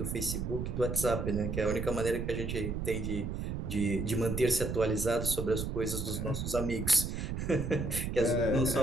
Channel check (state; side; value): noise; right; rumble, 3 dB below the sound